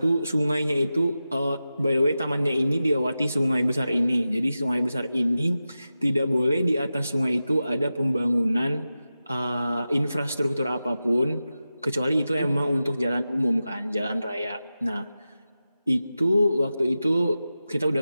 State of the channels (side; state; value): both; inverted; correlation -0.93